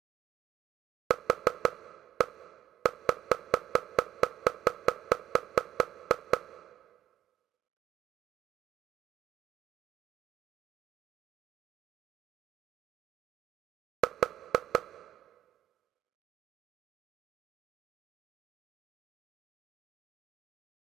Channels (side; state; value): left; quieter; 11.7 dB